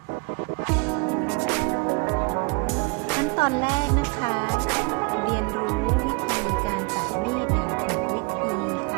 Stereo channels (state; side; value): quieter; left; 31.2 dB